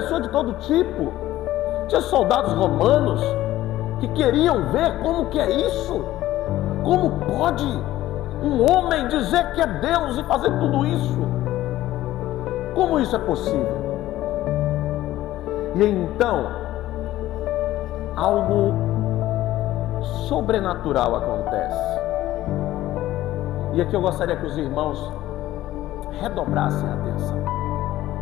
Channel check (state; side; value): quieter; right; 14.9 dB